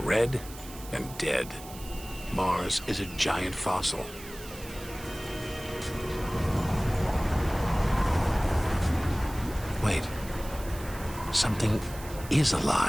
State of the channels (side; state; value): right; noise; hiss, 16 dB below the sound